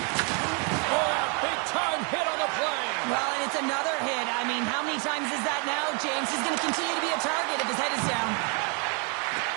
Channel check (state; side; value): quieter; left; 35.4 dB